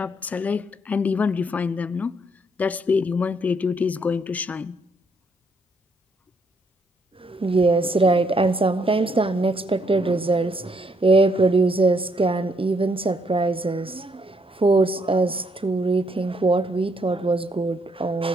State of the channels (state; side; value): normal; both; correlation 0.71